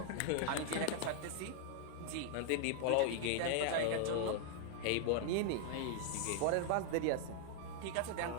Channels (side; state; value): both; different; correlation 0.00